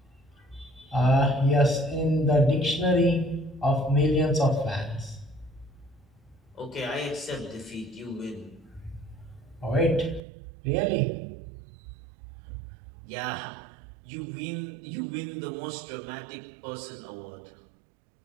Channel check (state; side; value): drops out; left; at 10.2 s